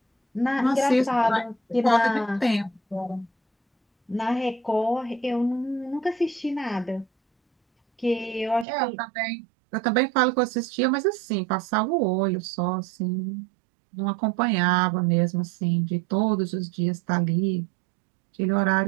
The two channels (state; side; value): drops out; left; at 8.7 s